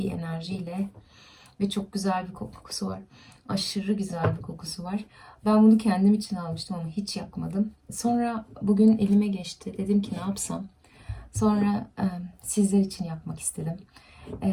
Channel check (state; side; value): identical; both; correlation 1.00